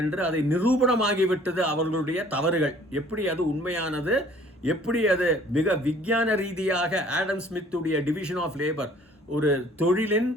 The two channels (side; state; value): both; normal; correlation 0.54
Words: என்று அதை நிரூபணமாகிவிட்டது அவர்களுடைய தவறுகள். எப்படி அது உண்மையானது, எப்படி அது மிக விஞ்ஞான ரீதியாக ஆடம் ஸ்மித்துடைய டிவிஷன் ஆஃப் லேபர் ஒரு தொழிலின்